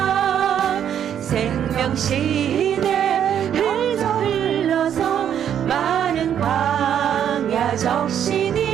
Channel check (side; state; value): left; quieter; 9.4 dB